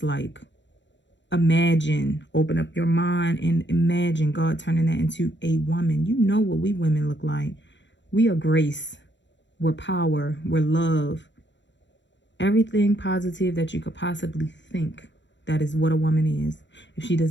like. Imagine, open up your mind and imagine God turning that into a woman. You know what we women look like. We are grace. We're power. We're love. Everything positive that you could possibly think. That is what a woman is. If she does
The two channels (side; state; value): right; late; 0.53 ms